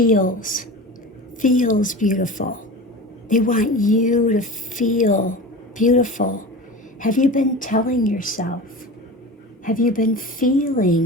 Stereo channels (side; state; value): both; normal; correlation 0.32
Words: beautiful. They want you to feel beautiful. Have you been telling yourself? Have you been